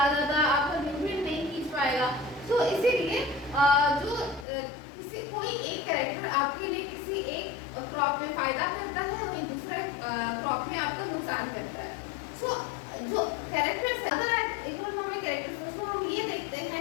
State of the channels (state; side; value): drops out; right; at 4.5 s